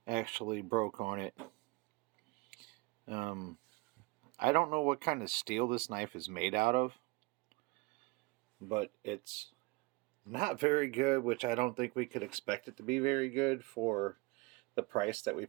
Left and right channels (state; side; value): quieter; left; 24.8 dB